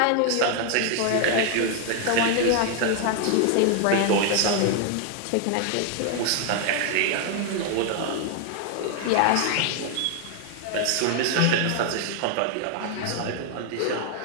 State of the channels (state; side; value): different; both; correlation 0.00